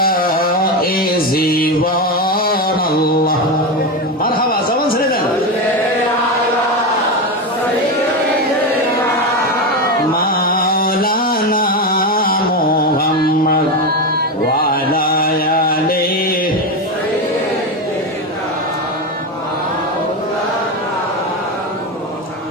এ জীবন। আল্লাহ মারহাবা, জবান ছেড়ে দেন। মাওলানা মুহাম্মদ ওয়া আলা আলিহি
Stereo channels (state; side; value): normal; both; correlation 0.15